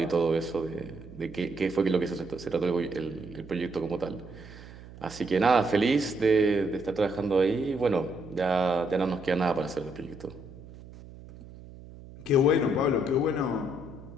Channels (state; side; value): noise; right; hum, 17 dB below the sound